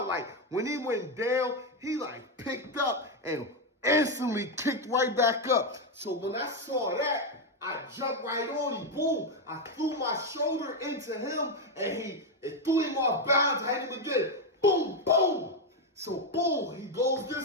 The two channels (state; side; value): normal; both; correlation 0.06